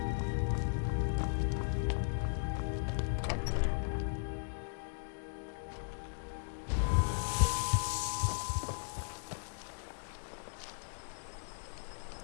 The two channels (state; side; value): silent; right; digital silence